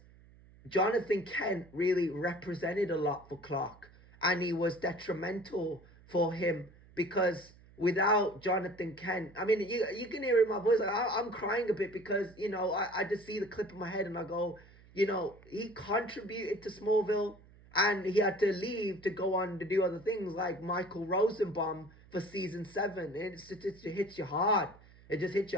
Jonathan Kent really represented a lot for Clark, and he was detrimental for him, because without Jonathan Kent, I mean, you can hear in my voice, like, I'm crying a bit, because, I just see the clip in my head and I go, he contributed to Smallville, and he had to leave to go on to do other things like Michael Rosenbaum for season 7. It hits you hard. It just hits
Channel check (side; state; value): right; noise; hum, 24 dB below the sound